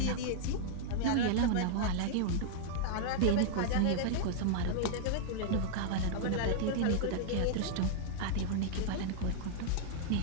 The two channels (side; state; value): both; different; correlation -0.01